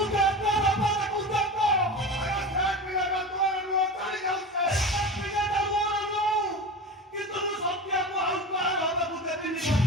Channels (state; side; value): normal; both; correlation 0.29